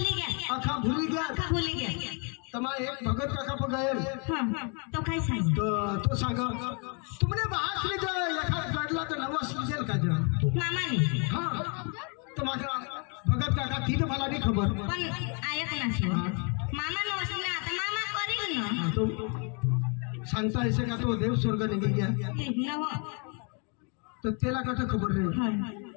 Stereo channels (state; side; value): quieter; right; 36.9 dB